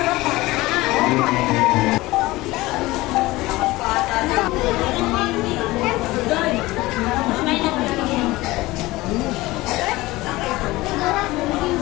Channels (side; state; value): right; quieter; 19.5 dB